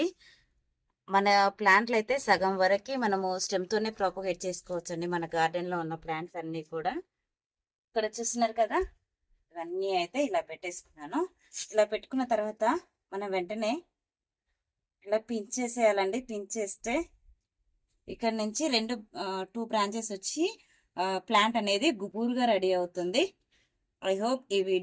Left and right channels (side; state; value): both; identical; correlation 1.00